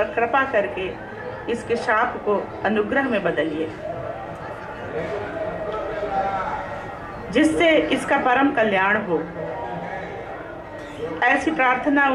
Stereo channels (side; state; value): both; identical; correlation 1.00